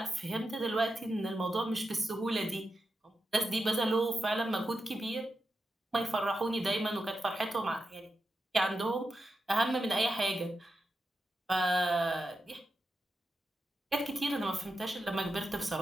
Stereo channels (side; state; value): both; normal; correlation 0.88